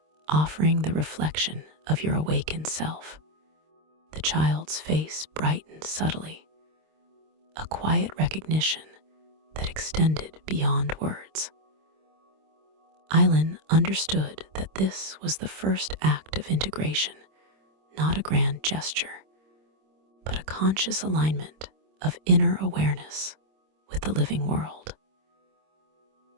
offering the reflection of your awakened self." The child's face brightened subtly, a quiet recognition that extended beyond words. Aylin understood that this was the first act of integration, not a grand gesture, but a conscious alignment of inner awareness with the living world.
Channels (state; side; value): late; left; 26 ms